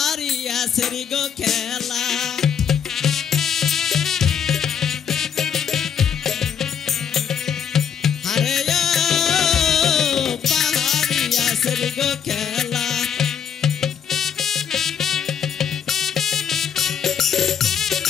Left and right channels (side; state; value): right; quieter; 7.9 dB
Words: সেরি গো খেলা, আরে ও পাহাড়িয়া সেরি গো খেলা।